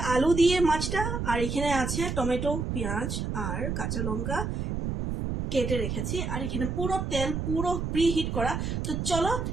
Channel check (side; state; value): right; noise; rumble, 2 dB below the sound